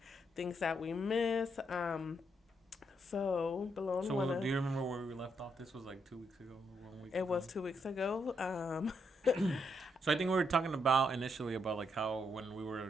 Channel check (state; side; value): normal; both; correlation 0.77